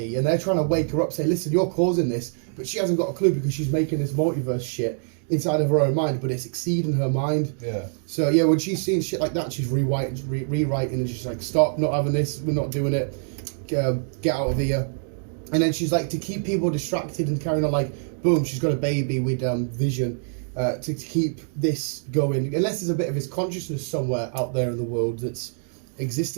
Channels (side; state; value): left; silent; digital silence